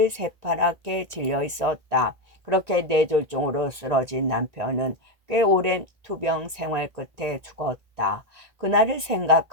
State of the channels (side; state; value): left; late; 1.9 ms